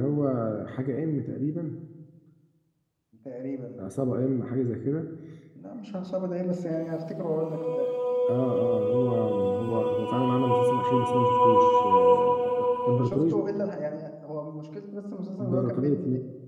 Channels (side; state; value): both; identical; correlation 1.00